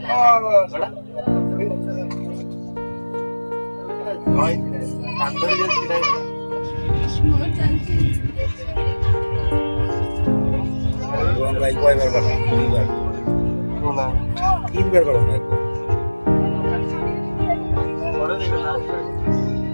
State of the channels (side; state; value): both; inverted; correlation -1.00